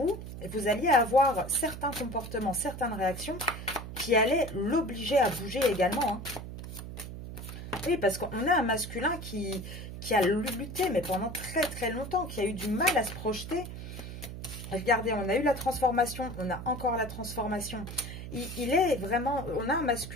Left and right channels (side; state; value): right; noise; hum, 10 dB below the sound